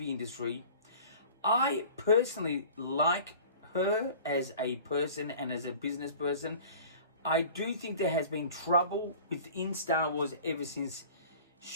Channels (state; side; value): inverted; both; correlation -0.43